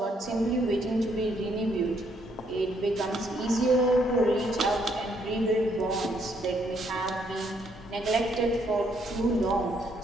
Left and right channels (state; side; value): normal; both; correlation 0.71